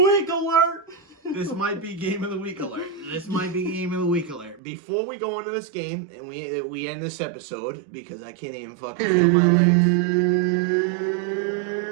alert! This might be game of the week alert. Before we go into this game and we end this episode because I can't even fucking feel my legs.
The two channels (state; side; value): drops out; left; at 4.6 s